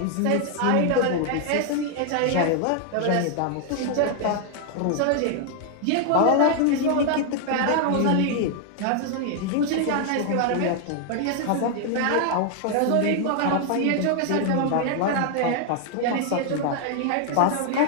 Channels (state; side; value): different; both; correlation 0.00